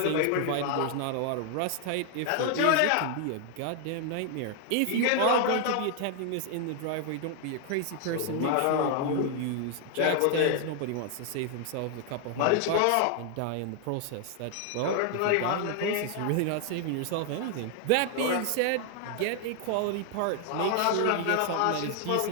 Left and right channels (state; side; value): different; both; correlation 0.00